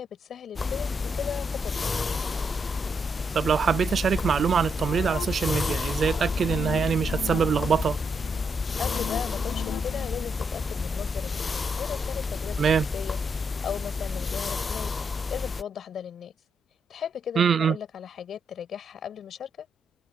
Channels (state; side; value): normal; both; correlation 0.80